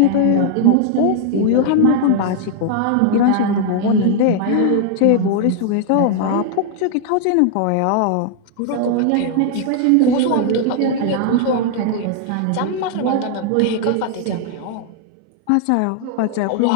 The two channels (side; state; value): both; different; correlation 0.00